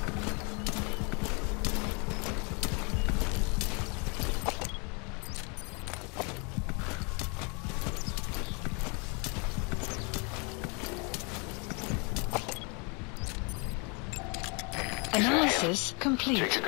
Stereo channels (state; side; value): quieter; right; 33.2 dB